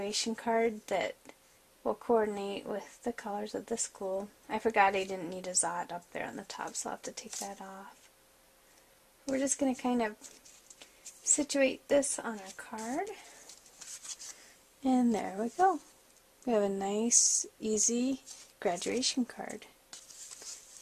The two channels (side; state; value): both; identical; correlation 1.00